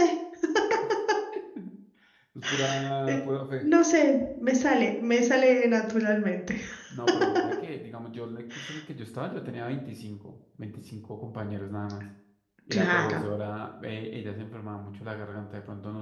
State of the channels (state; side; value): identical; both; correlation 1.00